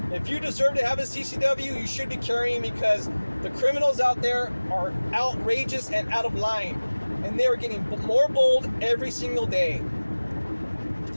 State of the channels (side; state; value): both; inverted; correlation -1.00